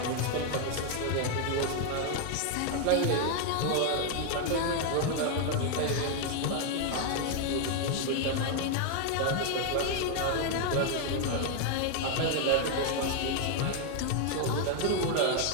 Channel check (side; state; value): both; different; correlation 0.00